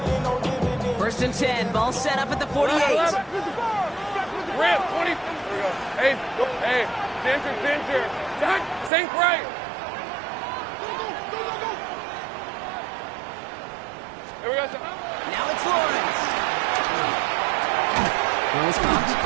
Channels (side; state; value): left; drops out; at 8.9 s